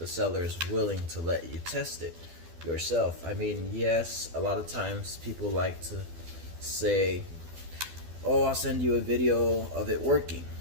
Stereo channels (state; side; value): late; left; 12 ms